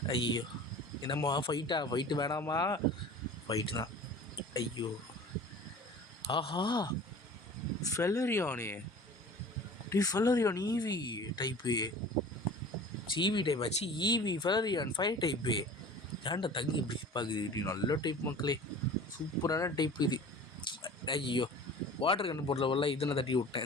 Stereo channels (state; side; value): normal; both; correlation 0.41